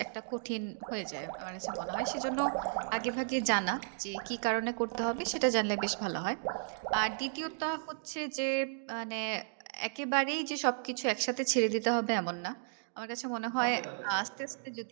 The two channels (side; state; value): left; silent; digital silence